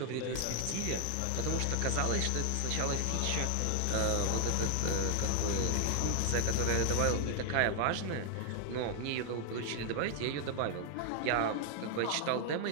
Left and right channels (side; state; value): both; different; correlation 0.00